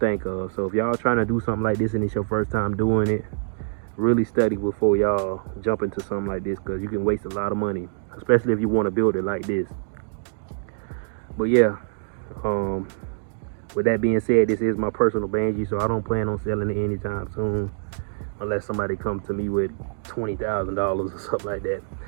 of. So if y'all trying to do something like this and it's your first time doing it, really study before y'all jump into something like this, because you can waste a lot of money, especially if you want to build it like this. But yeah, with that being said, this is my personal banshee, so I don't plan on selling it anytime soon, unless somebody comes to me with $20,000 or something like that.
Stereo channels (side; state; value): left; silent; digital silence